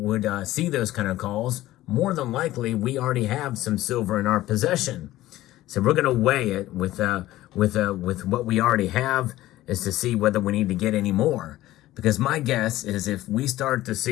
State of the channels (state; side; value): quieter; right; 15.8 dB